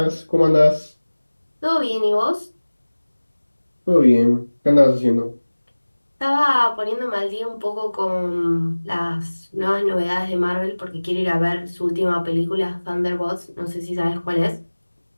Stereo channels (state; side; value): inverted; both; correlation -1.00